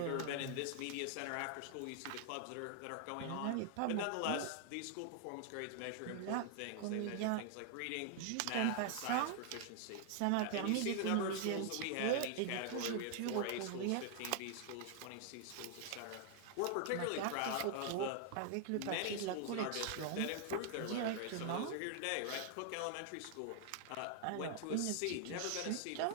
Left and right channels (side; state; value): both; different; correlation 0.00